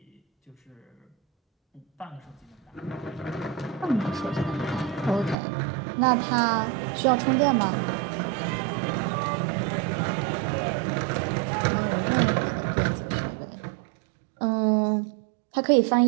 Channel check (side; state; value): left; drops out; at 5.4 s